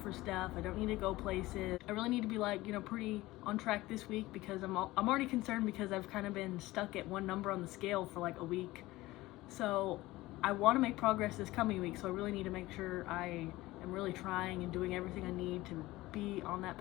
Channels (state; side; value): quieter; right; 18.5 dB